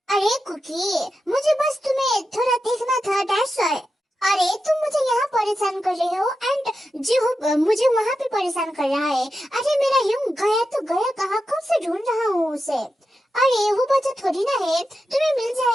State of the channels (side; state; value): both; normal; correlation 0.89